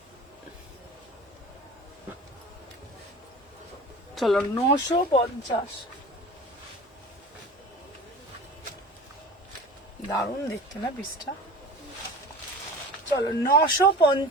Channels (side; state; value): both; normal; correlation 0.38